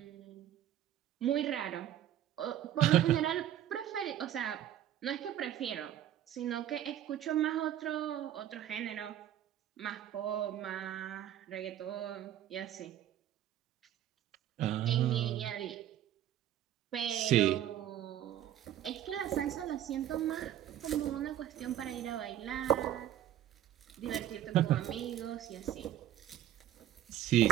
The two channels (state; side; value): quieter; left; 11.6 dB